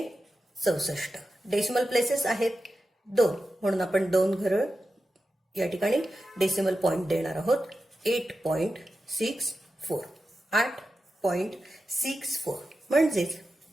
डेसिमल प्लेसेस आहेत 2 म्हणून आपण 2 घरं या ठिकाणी डेसिमल पॉइंट देणार आहोत. 8.64 8.64 म्हणजेच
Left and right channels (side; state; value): both; normal; correlation 0.91